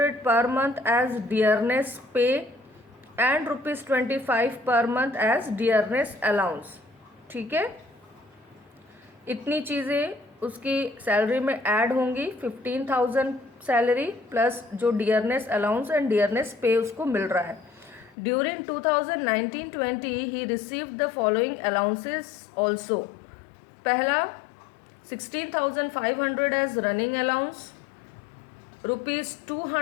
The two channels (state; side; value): drops out; right; at 18.2 s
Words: per month as dearness pay and rupees 25 per month as dearness allowance. ठीक है, इतनी चीज़ें उसकी salary में add होंगी. 15,000 salary plus जो डियरनेस अलाउंस एंड डियरनेस पे उसको मिल रहा है. During 2019-20 he received the following allowances also. पहला 16,500 as running allowance, rupees